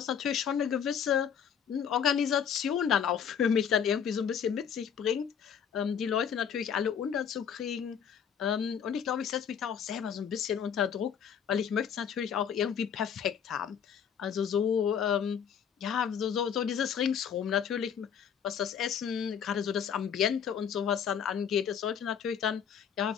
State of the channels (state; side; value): quieter; right; 7.9 dB